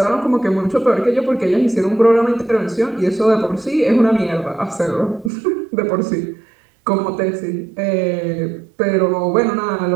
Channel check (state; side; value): drops out; left; at 5.3 s